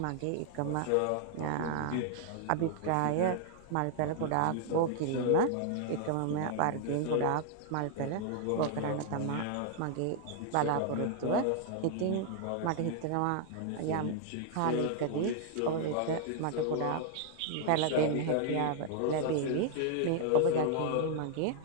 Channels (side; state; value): both; different; correlation 0.00